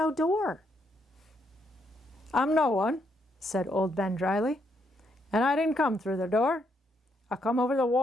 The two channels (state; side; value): normal; both; correlation 0.75